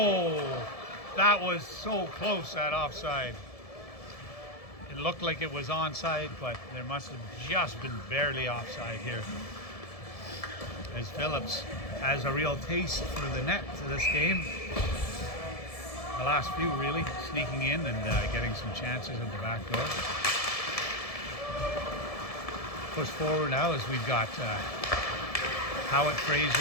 that was so close, that offside. It looked like it was onside, but there must have just been barely offside here. As Phillips has a real taste for the net to this game. The last few really, sneaking in and getting some chances at the back door. Push forward now as we've got Howitt, Fraser,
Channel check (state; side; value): late; right; 1.7 ms